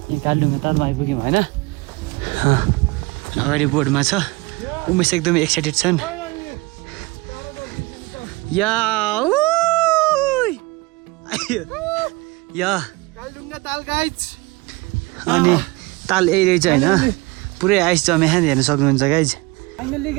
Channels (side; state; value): left; quieter; 23.3 dB